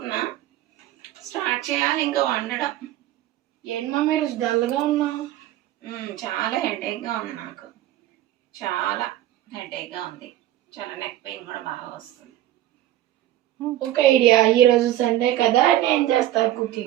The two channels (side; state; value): left; quieter; 13.6 dB